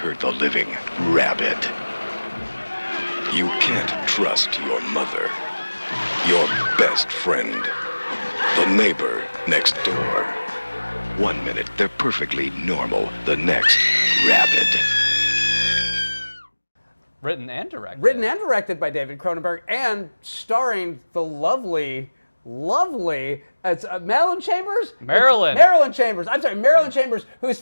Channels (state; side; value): inverted; both; correlation -1.00